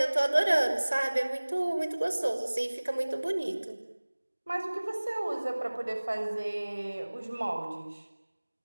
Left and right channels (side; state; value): both; inverted; correlation -1.00